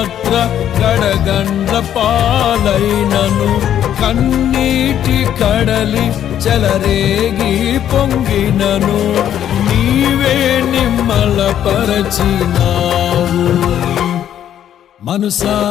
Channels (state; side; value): quieter; right; 10.5 dB